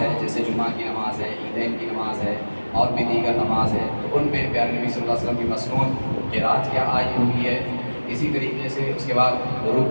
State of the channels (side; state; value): both; inverted; correlation -1.00